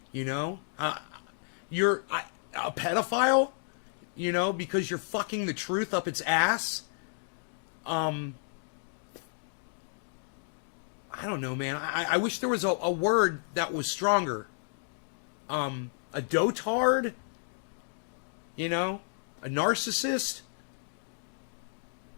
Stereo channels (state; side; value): silent; right; digital silence